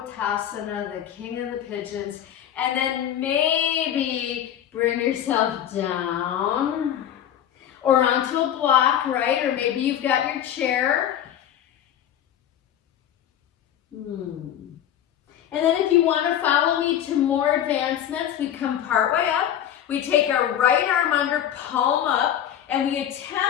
the king of the pigeons. And then maybe bring yourself down or onto a block, right? Or maybe you've got your chair. And then if you want to follow me to more advancements, we come part way up. We take our right arm under, palm up, and we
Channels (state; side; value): quieter; right; 10.5 dB